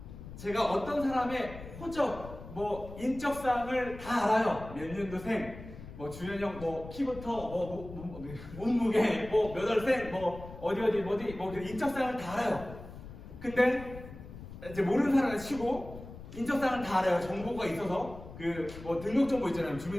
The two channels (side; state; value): left; noise; rumble, 14 dB below the sound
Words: 제가 어떤 사람의 호적, 인적사항을 다 알아요. 몇 년도생, 주연형, 키부터, 몸무게, 몇 월생, 어디, 인적사항을 다 알아요. 근데 이제 모르는 사람을 치고 인적사항을 다 알아요. 정보가 있어서 등록정보 있잖아요.